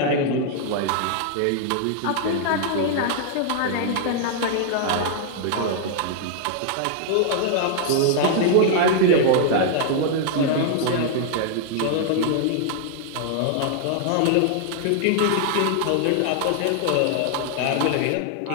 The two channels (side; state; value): both; different; correlation 0.00